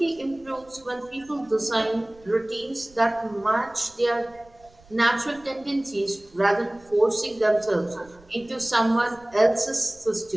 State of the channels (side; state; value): right; noise; rumble, 27 dB below the sound